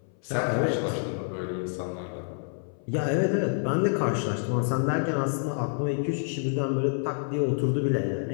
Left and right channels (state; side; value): silent; right; 58 dB below the other